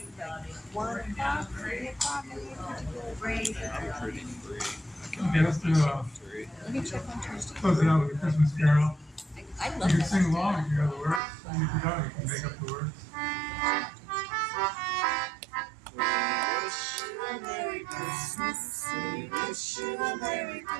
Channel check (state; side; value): drops out; left; at 11.2 s